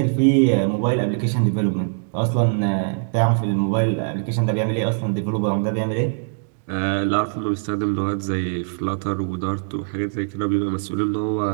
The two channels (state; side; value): silent; left; digital silence